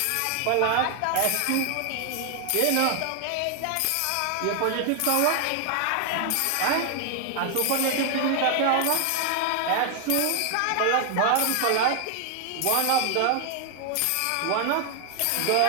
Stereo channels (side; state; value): both; different; correlation 0.00